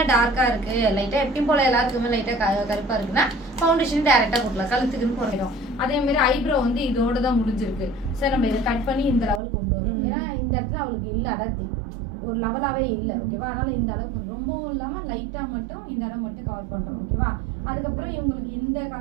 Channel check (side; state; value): left; drops out; at 9.4 s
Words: டார்க்கா இருக்கு, லைட்டா எப்பயும் போல எல்லாருக்குமே லைட்டா கருப்பா இருக்குன்னா ஃபவுண்டேஷன் டைரக்டா போடலாம். கழுத்துக்குன்னு போடணும். அதே மாதிரி ஐப்ரோ வந்து இதோட தான் முடிஞ்சிருக்கு. சரி, நம்ம இதை கட் பண்ணி இந்த லெவலுக்கு கொண்டு வரோம். ஏன்னா இந்த இடத்துல அவளுக்கு இல்ல அடர்த்தி, ஒரு லெவலாவே இல்லை. ஓகேவா? அதனால இந்த அளவுக்கு ரொம்பவும் இல்லாம லைட்டா மட்டும் இந்த இடம் மட்டும் கவர் பண்றோம். ஓகேவா? அதுக்கப்புறம் இவங்களுக்கு இந்த